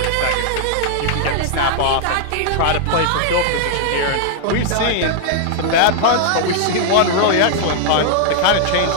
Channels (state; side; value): different; both; correlation -0.01